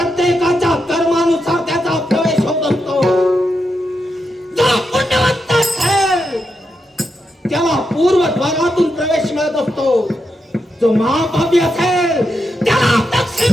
कर्मानुसार त्याचा प्रवेश होत असतो. जो पुण्यवंत असेल त्याला पूर्वद्वारातून प्रवेश मिळत असतो. जो महापापी असेल त्याला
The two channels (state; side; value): normal; both; correlation 0.85